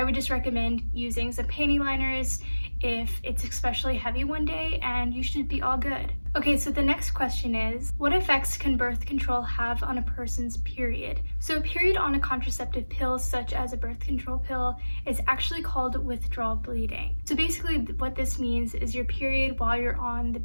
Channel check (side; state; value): both; inverted; correlation -1.00